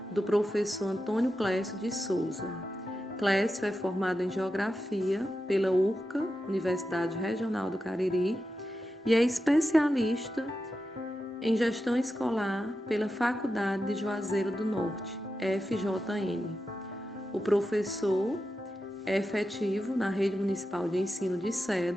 do professor Antônio Clécio de Souza. Clécio é formado em Geografia pela URCA, Universidade Regional do Cariri, e é especialista em Gestão Escolar pela Faculdade de Juazeiro do Norte, FJN. O professor é efetivo na Rede Municipal de Ensino de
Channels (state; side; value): normal; both; correlation 0.89